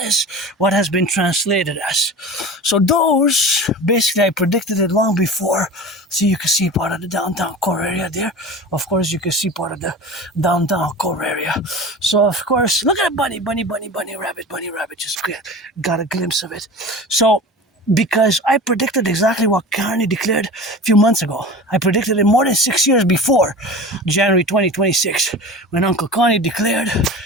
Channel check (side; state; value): both; normal; correlation 0.34